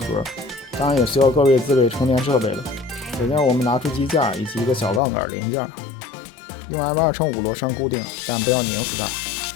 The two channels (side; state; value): right; drops out; at 5.0 s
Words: 当然也需要各位自备充电设备了。首先我们拿出机架以及一个小杠杆零件，用 M2×5螺栓固定，但不要拧死它。